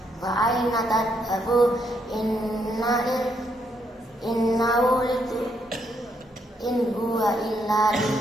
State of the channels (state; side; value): normal; both; correlation 0.75